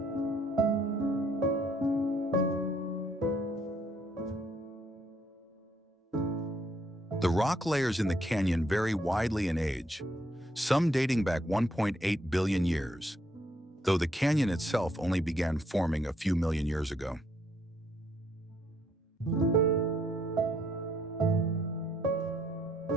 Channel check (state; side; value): normal; both; correlation 0.70